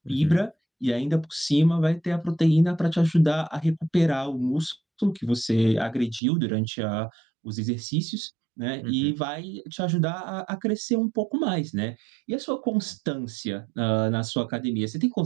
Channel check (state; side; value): drops out; left; at 6.2 s